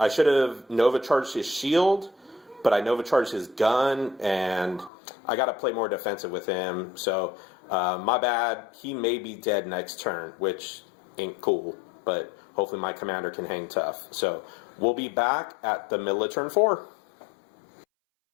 should have Nova Charged his shield, but I Nova Charged his gun, and I got to play more defensive with him. So, my bad. He may be dead next turn, which ain't cool, but hopefully my commander can hang tough. So, we'll be back at the middle of turn 4.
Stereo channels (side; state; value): right; drops out; at 4.9 s